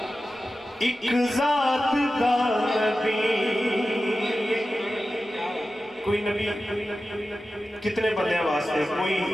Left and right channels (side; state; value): both; normal; correlation 0.94